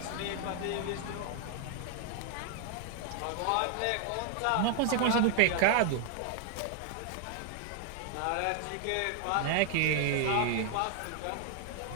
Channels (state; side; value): different; both; correlation 0.00